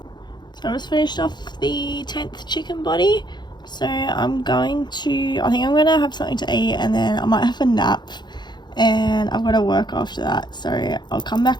So I just finished off the 10th chicken body. So I think I'm going to have something to eat and then I might have a nap. And I've got to work after that, so I'll come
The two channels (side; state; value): right; late; 0.21 ms